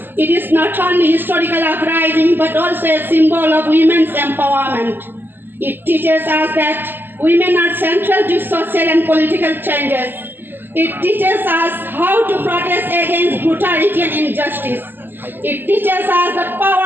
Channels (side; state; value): left; late; 0.097 ms